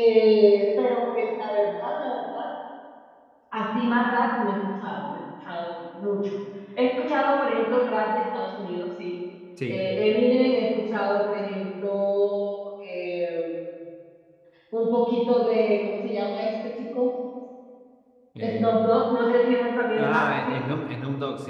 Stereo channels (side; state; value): both; identical; correlation 1.00